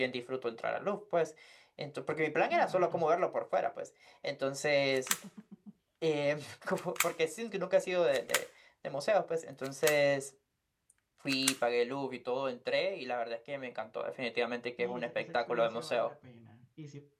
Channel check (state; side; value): identical; both; correlation 1.00